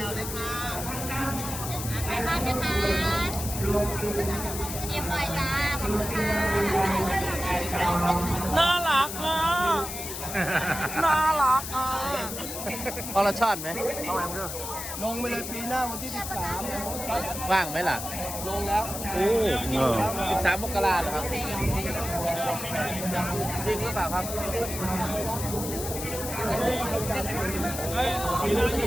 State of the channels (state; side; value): noise; left; hiss, 7 dB below the sound